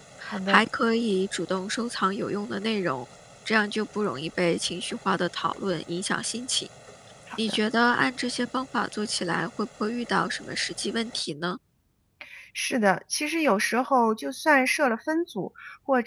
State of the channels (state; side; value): identical; both; correlation 1.00